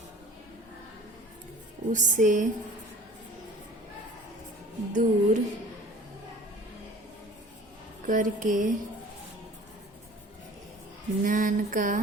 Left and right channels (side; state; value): both; normal; correlation 0.45